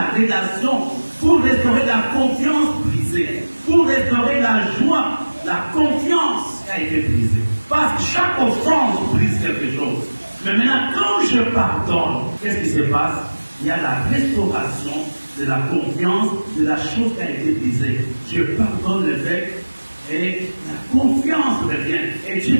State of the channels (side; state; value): both; inverted; correlation -1.00